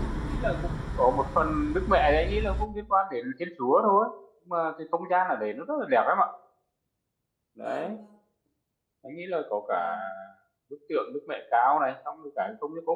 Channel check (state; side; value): identical; both; correlation 1.00